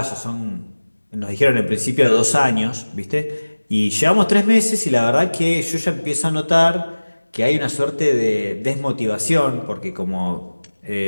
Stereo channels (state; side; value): inverted; both; correlation -1.00